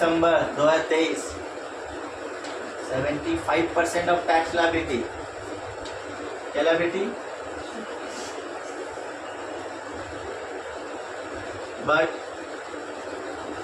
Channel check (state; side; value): identical; both; correlation 1.00